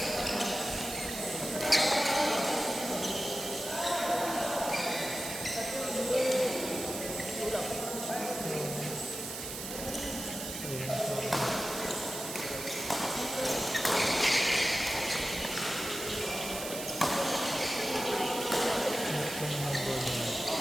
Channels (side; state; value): right; noise; hiss, 7 dB below the sound